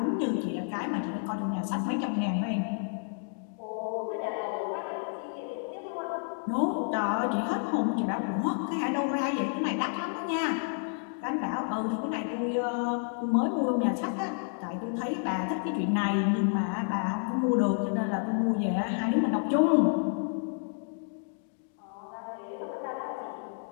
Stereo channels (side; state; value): right; silent; 58 dB below the other